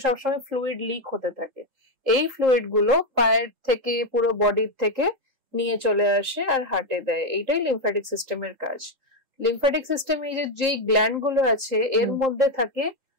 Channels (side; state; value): left; late; 3.8 ms